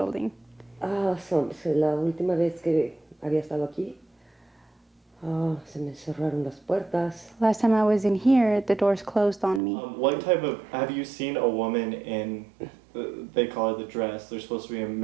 La última vez que había estado aquí, se me cerraron las puertas. Last time I was in here, the doors closed on me. Have you seen a woman in, they call it the dress, there's supposed to be a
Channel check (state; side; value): drops out; left; at 9.6 s